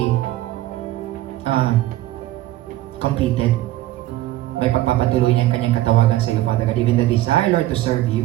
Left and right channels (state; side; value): quieter; left; 15.4 dB